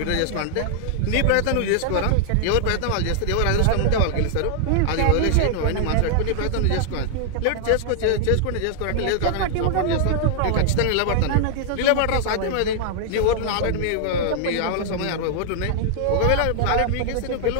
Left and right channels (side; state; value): both; different; correlation 0.00